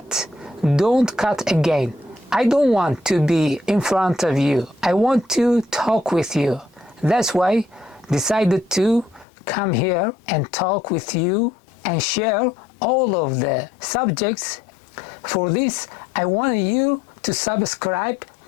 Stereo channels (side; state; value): right; drops out; at 9.2 s